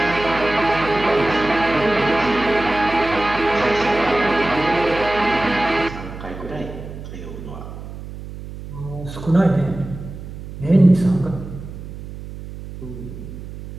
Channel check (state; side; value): noise; right; hum, 12 dB below the sound